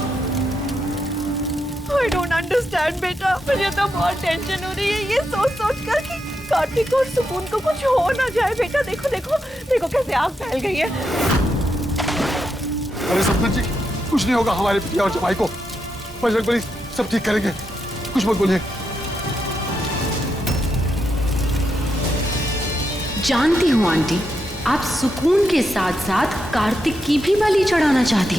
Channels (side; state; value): both; normal; correlation 0.83